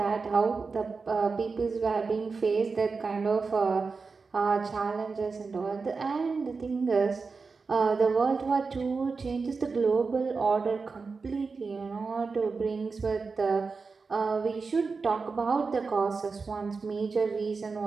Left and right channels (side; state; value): left; quieter; 4.6 dB